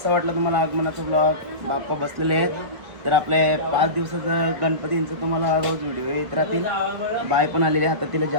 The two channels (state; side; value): late; left; 1.7 ms